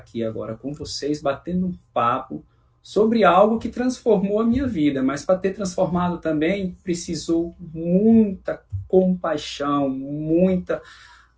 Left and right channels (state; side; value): identical; both; correlation 1.00